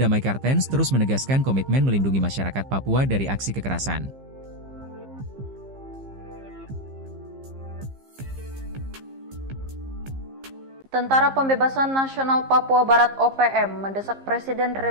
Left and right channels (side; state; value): left; late; 15 ms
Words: Kartens terus menegaskan komitmen melindungi masyarakat Papua dari aksi kekerasan. Tentara Pembebasan Nasional Papua Barat OPM mendesak Presiden